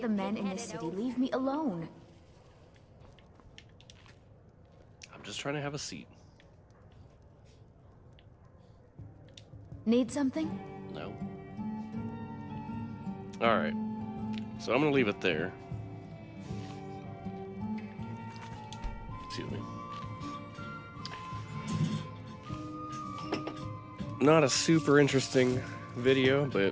men in this city leave me alone? I'm just trying to have a seat. Need something? No. Alright. So I'm gonna leave it there. Excuse me. Not a super interesting video,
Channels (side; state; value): both; identical; correlation 1.00